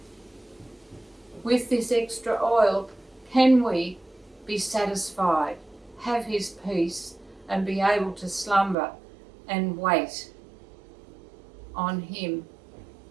with this extra oil, can we be satisfied, have his peace, and be able to slumber and wait on him.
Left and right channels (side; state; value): left; drops out; at 8.8 s